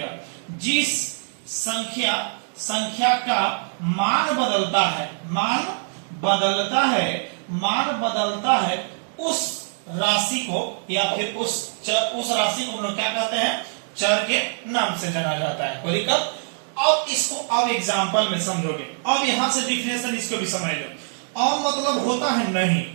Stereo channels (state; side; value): silent; left; 63 dB below the other